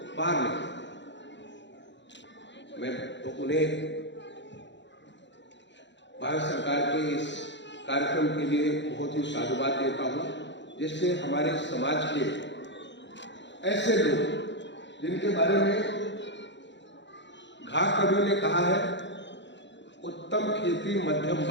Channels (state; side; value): late; right; 0.52 ms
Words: बाहर निकले। मैं तो उन्हें भारत सरकार के इस कार्यक्रम के लिए बहुत ही साधुवाद देता हूं, जिससे हमारे समाज के ऐसे लोग जिनके बारे में घा कवि ने कहा है, उत्तम खेती मध्यम